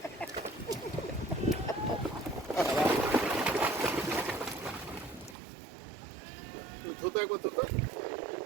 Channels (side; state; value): left; drops out; at 5.4 s